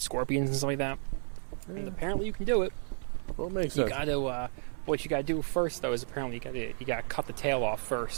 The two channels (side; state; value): left; silent; 56 dB below the other